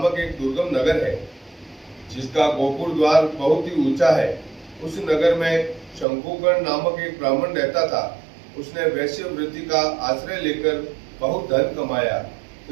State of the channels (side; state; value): left; drops out; at 6.1 s